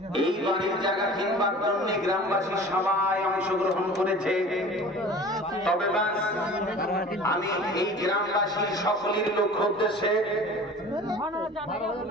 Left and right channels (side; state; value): both; normal; correlation 0.42